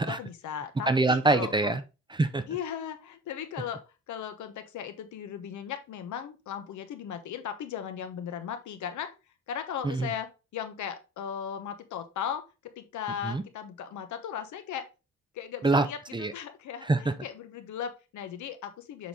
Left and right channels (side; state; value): both; normal; correlation 0.42